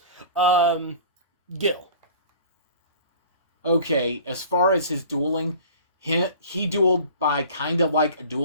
Gil. Okay, as far as his dueling, he dueled by kind of like a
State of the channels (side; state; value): both; inverted; correlation -0.43